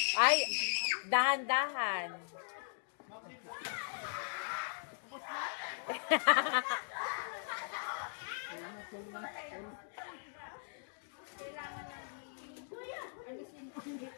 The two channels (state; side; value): silent; right; digital silence